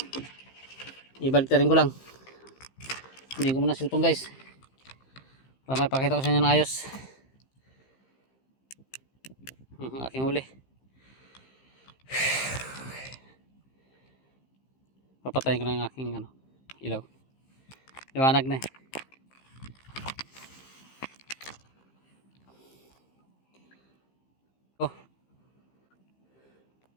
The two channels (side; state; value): right; late; 15 ms